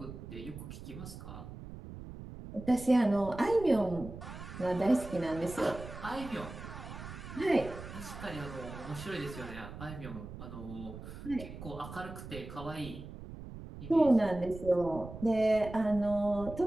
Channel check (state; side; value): noise; right; rumble, 12 dB below the sound